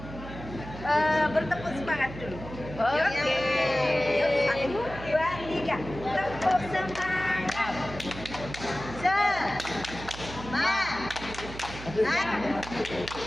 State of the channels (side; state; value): right; noise; hum, 12 dB below the sound